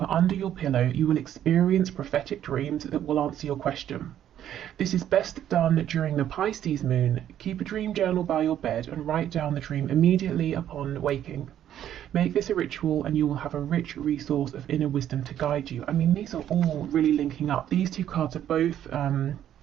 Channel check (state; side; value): quieter; left; 10.8 dB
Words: under your pillow. You will experience prophetic dreams that will answer your question. This is best done during the Pisces moon. Keep a dream journal by your bed and write down the dream immediately upon waking. Make this a ritual and you will have a rich resource of inner wisdom to guide you. I mean, these are all really linking up. These two cards are both